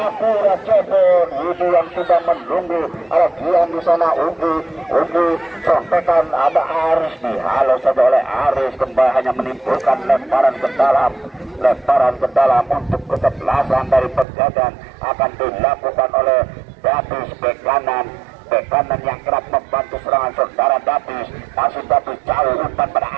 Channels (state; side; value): drops out; left; at 14.2 s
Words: Jebon. Widi yang sudah menunggu. Ada Gian di sana. Ugi contekan ada Aris. Dihalau saja oleh Aris. Kembali hanya menimbulkan lemparan ke dalam. Lemparan ke dalam untuk kesebelasan dari Pegadaian akan dilakukan oleh Dapis bek kanan. Bek kanan yang kerap membantu serangan saudara Dapis. Masih Dapis jauh umpan pada